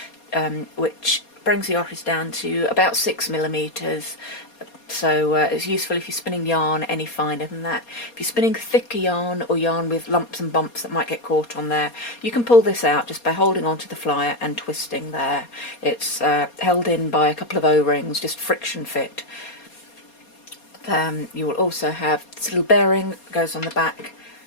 which brings the orifice down to about 6mm. So it's useful if you're spinning yarn any finer than that. If you're spinning thicker yarn or yarn with lumps and bumps that might get caught on there, you can pull this out just by holding onto the flyer and twisting there. It's held in by a couple of O-rings, just friction fit. You will also have this little bearing that goes on the back,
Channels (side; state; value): right; late; 4.2 ms